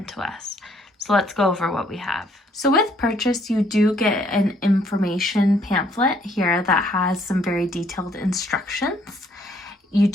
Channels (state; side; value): normal; both; correlation 0.66